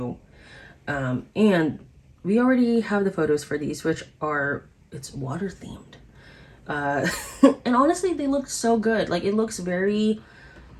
And we already have the photos for these, which are, it's water themed. And honestly, they look so good. Like, it looks very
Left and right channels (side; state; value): both; identical; correlation 1.00